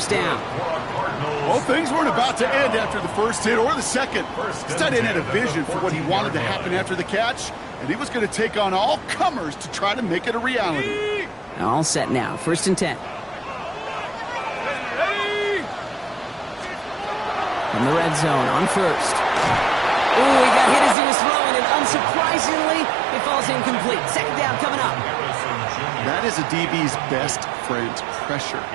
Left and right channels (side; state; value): left; drops out; at 21.0 s